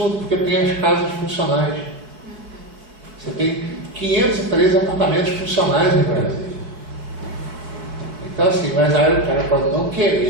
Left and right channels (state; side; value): late; left; 4.6 ms